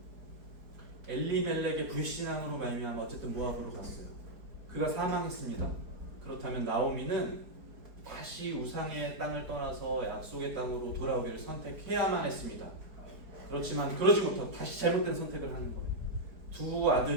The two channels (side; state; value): left; late; 4.7 ms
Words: 엘리멜렉의 불신앙으로 말미암아 어쨌든 모압으로 갔어요. 그가 사망했습니다. 그렇다면 나오미는 다시 우상의 땅을 떠나서 약속의 땅으로 돌아오기를 선택해야만 했습니다. 그렇지만 그러지 못하고 다시 잘못된 선택을 하는 거예요. 두